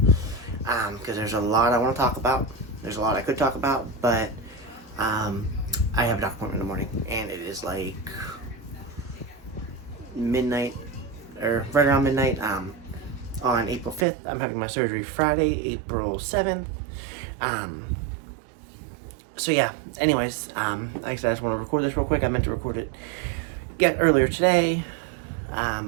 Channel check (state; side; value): drops out; left; at 14.1 s